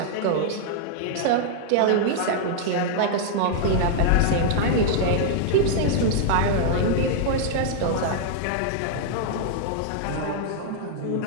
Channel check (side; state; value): both; different; correlation -0.01